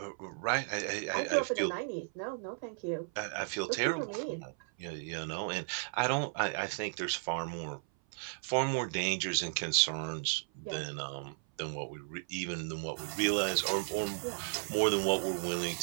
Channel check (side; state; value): left; silent; 55 dB below the other